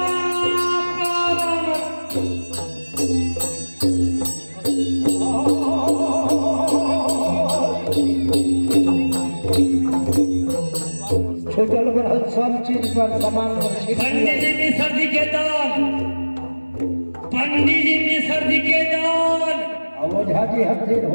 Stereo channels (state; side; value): inverted; both; correlation -1.00